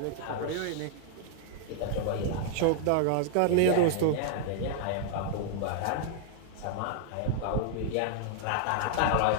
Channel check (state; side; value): different; both; correlation -0.01